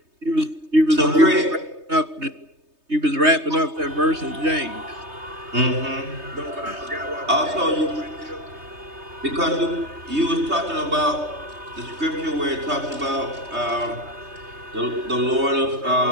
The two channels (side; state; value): left; late; 3.2 ms